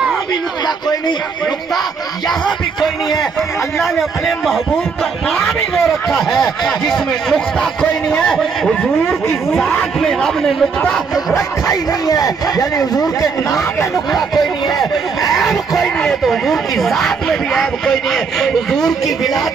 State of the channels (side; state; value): left; quieter; 5.3 dB